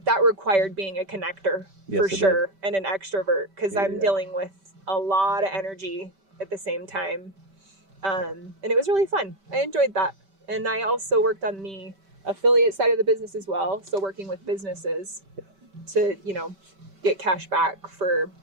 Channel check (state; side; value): late; left; 5.1 ms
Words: that required being a connector for sure and an extrovert, because I'm dealing with a lot of energy at the same time. And it was really fun. I enjoyed that. And I also worked on the affiliate side of the business as well. So working with businesses to, you know, get cash back for